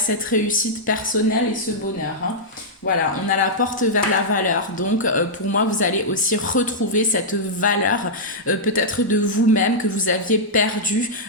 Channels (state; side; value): normal; both; correlation -0.09